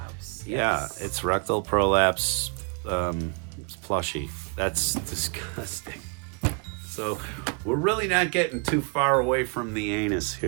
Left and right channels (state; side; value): quieter; left; 38.0 dB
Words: Yeah, it's rectal prolapse. It's plushy. That's disgusting. So we're really not getting too far away from the anus